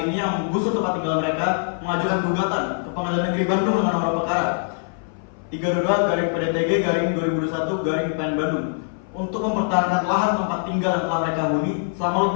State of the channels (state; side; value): silent; right; 58 dB below the other